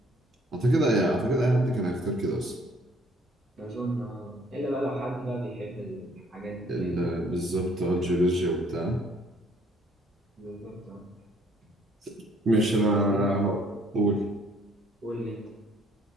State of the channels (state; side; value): normal; both; correlation 0.62